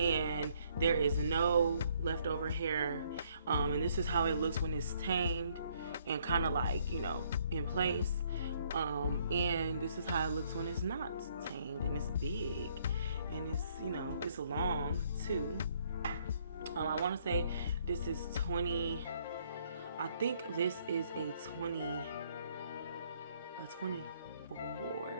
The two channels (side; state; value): both; inverted; correlation -0.66